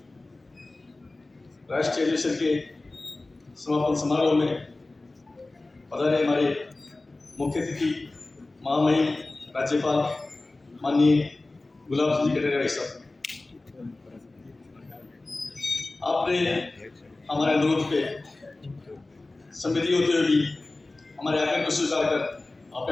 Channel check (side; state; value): right; quieter; 3.1 dB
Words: राष्ट्रीय अधिवेशन के समापन समारोह में पधारे हमारे मुख्य अतिथि महामहिम राज्यपाल माननीय गुलाब सिंह जी कटारिया भाई साहब, आपने हमारे अनुरोध पे संवेदी होते हुए भी हमारे आग्रह को स्वीकार कर आप